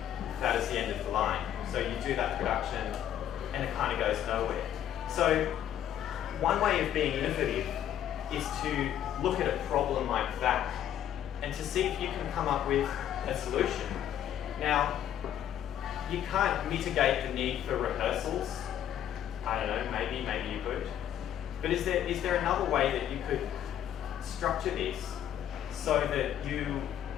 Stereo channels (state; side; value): quieter; right; 10.6 dB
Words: that is the end of the line. So you do that production, and it kind of goes nowhere. So one way of being innovative is to look at a problem like that, and to see if you can come up with a solution. Now, you can't mitigate the need for rehearsals. I don't know, maybe you could. But is there another way that you could structure this so that you